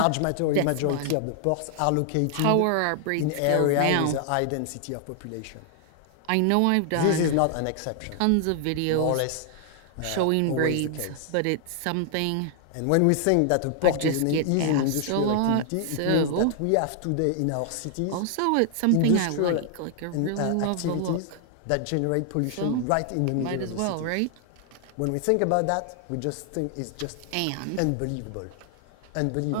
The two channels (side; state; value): both; different; correlation 0.00